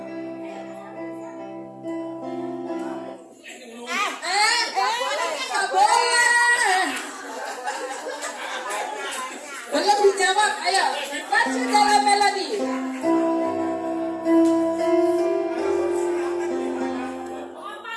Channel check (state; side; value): identical; both; correlation 1.00